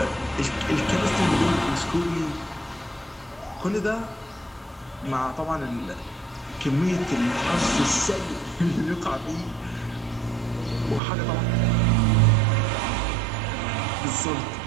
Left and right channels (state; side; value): drops out; left; at 11.0 s